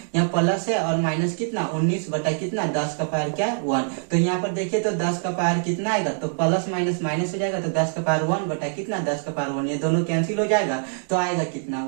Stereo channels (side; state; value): left; silent; digital silence